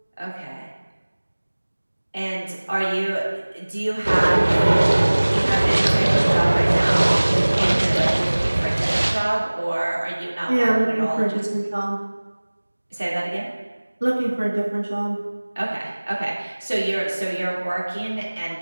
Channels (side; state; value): both; inverted; correlation -1.00